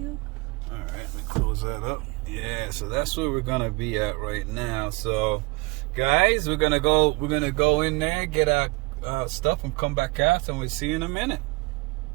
All right, let me close that up. Yeah, so that's where we're gonna be at right now. So, guys, we're gonna go in there, get our stuff, and come back out, and we'll see you in a minute.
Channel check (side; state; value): left; quieter; 25.8 dB